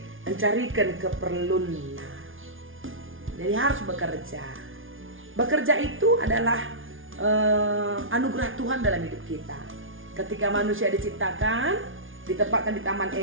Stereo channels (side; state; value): left; late; 0.58 ms